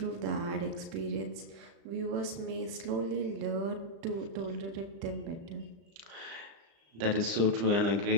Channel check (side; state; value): left; late; 36 ms